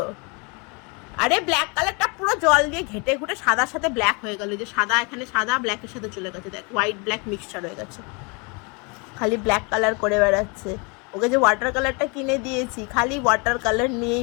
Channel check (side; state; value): right; quieter; 31.4 dB